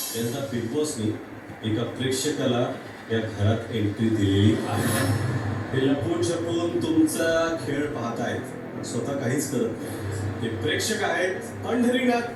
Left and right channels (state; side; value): identical; both; correlation 1.00